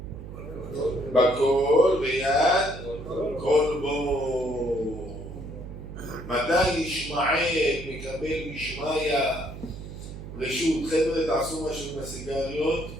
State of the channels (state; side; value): noise; right; hum, 11 dB below the sound